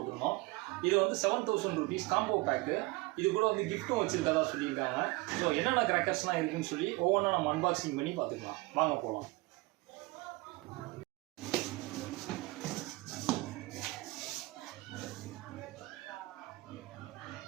இது வந்து 7000 rupees காம்போ பேக்கு. இது கூட வந்து கிஃப்ட்டும் வச்சுருக்கதா சொல்லியிருக்காங்க. ஸோ என்னென்ன கிராக்கர்ஸ்லாம் இருக்குதுன்னு சொல்லி ஒவ்வொன்றா நம்ம அன்பாக்சிங் பண்ணி பார்த்துக்கலாம். வாங்க போகலாம்.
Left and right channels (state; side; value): quieter; left; 22.9 dB